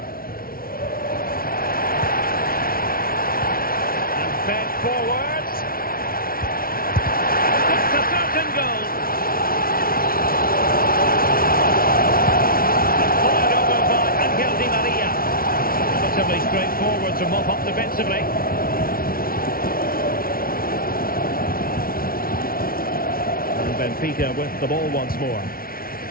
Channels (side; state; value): right; late; 0.43 ms